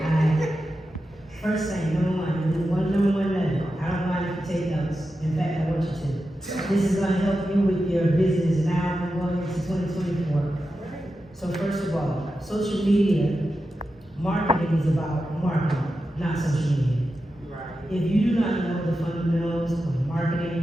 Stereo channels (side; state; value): both; normal; correlation 0.90